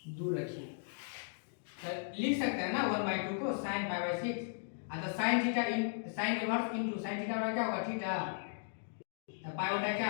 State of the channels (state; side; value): silent; right; digital silence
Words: दूर रखिए। तो लिख सकते हैं ना 1/2 को sin π/6, तो sin theta sin inverse into sin theta का क्या होगा थीटा, तो पाई बटा